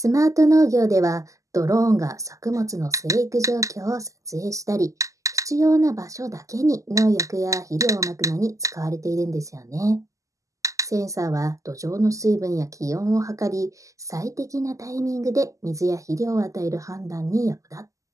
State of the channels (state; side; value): late; left; 0.16 ms